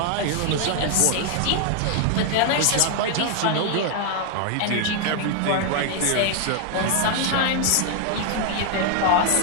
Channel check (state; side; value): different; both; correlation 0.00